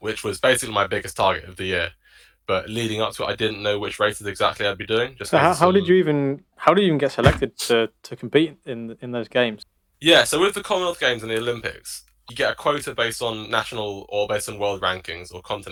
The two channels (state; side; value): identical; both; correlation 1.00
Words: was basically my biggest target of the year. But leading up to it, I didn't know which races exactly I'd be doing, just So because of some. how did you even get selected to compete in those games? Yeah, so with the Commonwealth Games and the Olympics, you get a quota based on national or based on world rankings or